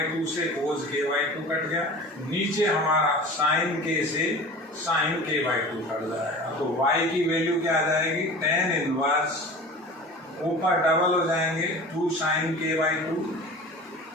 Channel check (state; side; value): normal; both; correlation 0.38